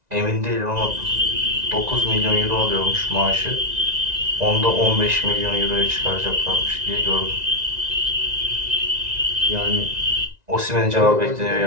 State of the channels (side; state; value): left; late; 1.9 ms